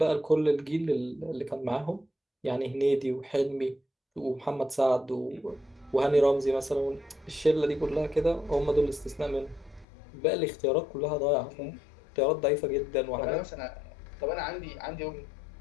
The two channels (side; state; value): right; drops out; at 9.9 s